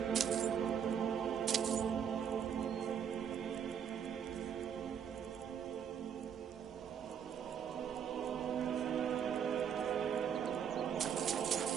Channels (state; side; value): quieter; left; 8.1 dB